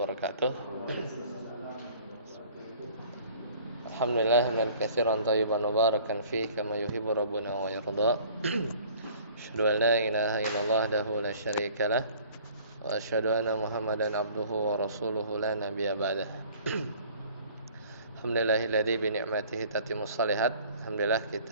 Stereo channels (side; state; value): both; inverted; correlation -0.51